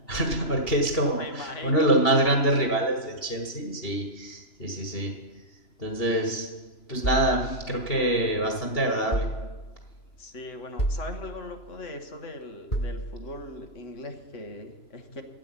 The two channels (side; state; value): right; late; 3.0 ms